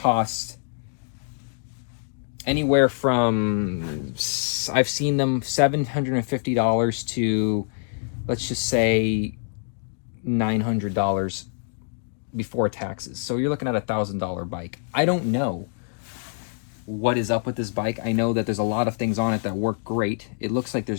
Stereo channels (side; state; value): right; silent; digital silence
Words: anywhere from, I've seen them $750 to, let's just say, $900 before taxes. So you're looking at $1,000 bike. I don't know what is up with this bike. I know that there's a lot of things on it that work great. It looks like